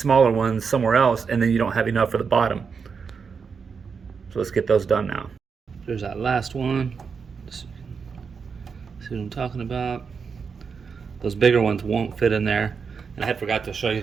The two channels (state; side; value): quieter; left; 5.8 dB